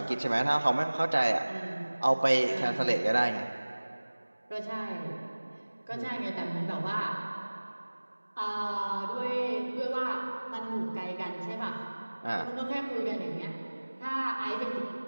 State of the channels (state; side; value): inverted; both; correlation -1.00